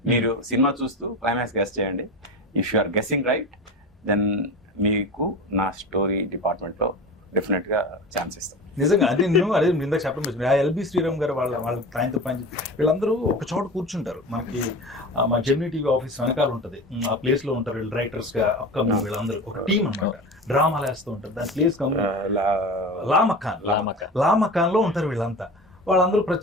మీరు సినిమా చూస్తూ క్లైమాక్స్ గెస్ట్ చేయండి. If you are guessing right then మీకు నా స్టోరీ డిపార్ట్మెంట్లో డెఫినెట్గా ఛాన్స్ ఇస్తాం. నిజంగా అదే ఇందాక చెప్పడం ఆ ఎల్బి శ్రీరామ్ గారు వాళ్ళ ఆయనతో పని వీళ్ళందరూ ఒక చోట కూర్చుంటారు. మనకి మా జెమినీ టీవీ ఆఫీస్ వెనకాల ఉంటుంది, ఆ ప్లేస్ లో ఉంటారు వీళ్ళు రైటర్స్ గా. అప్కమింగ్ వీళ్ళందరూ ఒక టీం అన్నమాట, డ్రామాలు వేస్తూ ఉంటారు. దాని ప్లేస్ లామకాన్ లో ఉంటారు వీళ్ళంతా. వాళ్ళందరూ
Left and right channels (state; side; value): normal; both; correlation 0.31